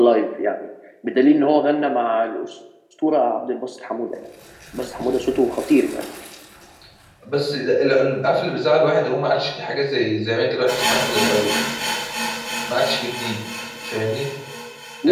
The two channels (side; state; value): both; identical; correlation 1.00